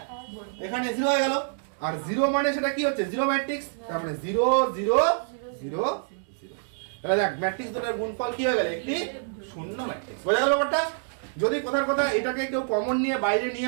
এখানে 0 হয়ে গেল, আর 0 মানে সেটা কি হচ্ছে 0 ম্যাট্রিক্স, তার মানে 0 0 0 0, তাহলে দেখ ম্যাট্রিক্স দুটোর গুণফল কি হয়ে গেল একটি শূন্য ম্যাট্রিক্স, বোঝা গেল ব্যাপারটা। যদি কোথার কথা এটাকে কেউ কমন নিয়ে বাইরে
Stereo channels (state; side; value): silent; left; digital silence